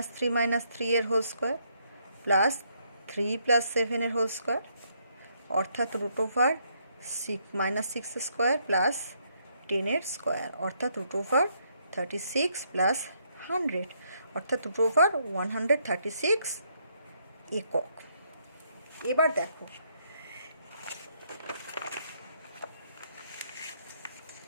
এর হোল স্কোয়ার প্লাস 3 + 7 এর হোল স্কোয়ার, অর্থাৎ রুট ওভার -6 স্কোয়ার প্লাস 10 এর স্কোয়ার, অর্থাৎ রুট ওভার 36 + 100, অর্থাৎ রুট ওভার 136 একক। এবার দেখো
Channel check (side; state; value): both; inverted; correlation -0.73